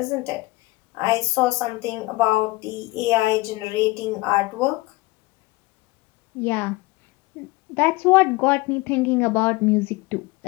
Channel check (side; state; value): right; quieter; 21.4 dB